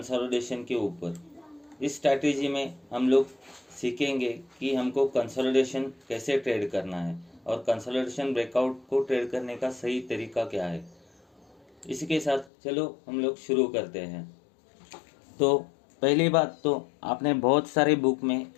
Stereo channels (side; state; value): right; drops out; at 12.5 s